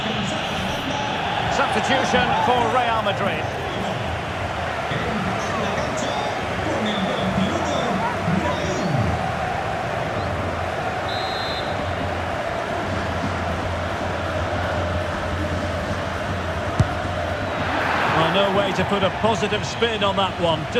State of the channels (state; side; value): identical; both; correlation 1.00